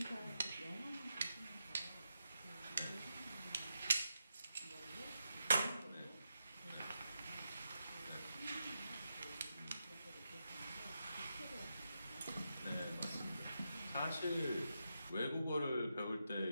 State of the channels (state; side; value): inverted; both; correlation -0.85